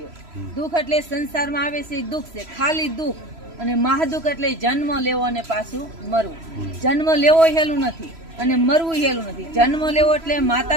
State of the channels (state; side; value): late; left; 3.0 ms